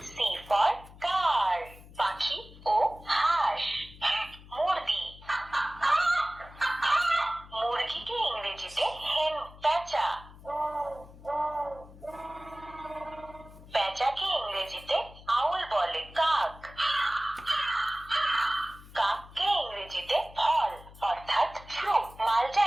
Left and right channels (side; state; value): left; noise; hum, 19 dB below the sound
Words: C for car, পাখি ও হাঁস। মুরগি, মুরগিকে ইংরেজিতে হেন। পেঁচা, পেঁচাকে ইংরেজিতে আউল বলে। কাক, কাককে ইংরেজিতে ফল অর্থাৎ ফ্রুট। মালটা